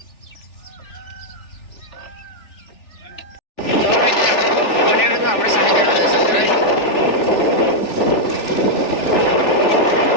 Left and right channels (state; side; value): late; right; 3.4 ms